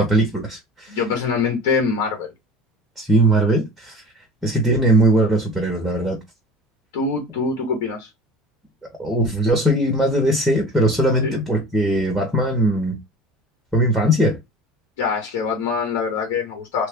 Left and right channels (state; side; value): normal; both; correlation 0.38